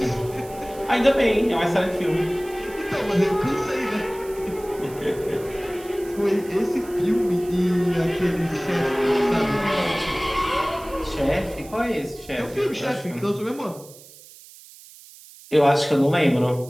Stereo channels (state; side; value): noise; right; hiss, 20 dB below the sound